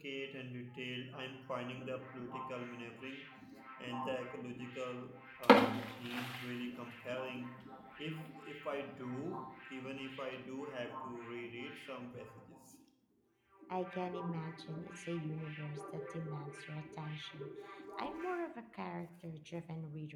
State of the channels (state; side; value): identical; both; correlation 1.00